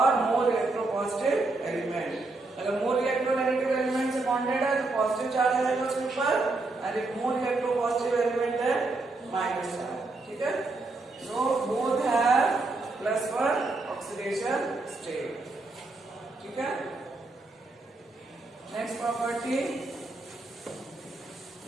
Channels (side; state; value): left; quieter; 3.3 dB